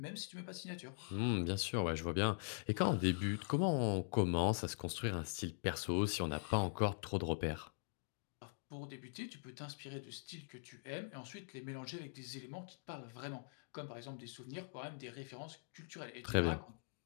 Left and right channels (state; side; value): silent; right; digital silence